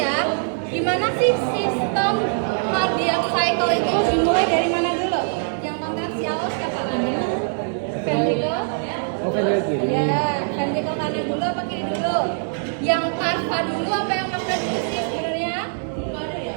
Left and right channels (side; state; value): left; silent; digital silence